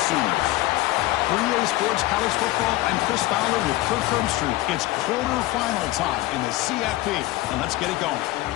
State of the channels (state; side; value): quieter; right; 17.9 dB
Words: Sooners. For EA Sports College Football, I'm Chris Fowler with Kirk Herbstreit. It's quarterfinal time in the CFP, and let's get it going.